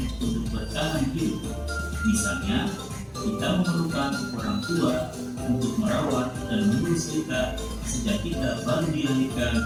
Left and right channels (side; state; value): both; identical; correlation 1.00